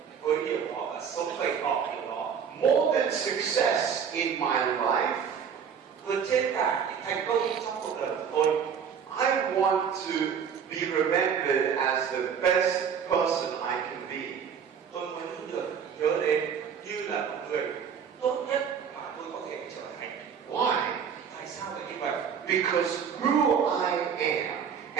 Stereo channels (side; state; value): left; quieter; 7.3 dB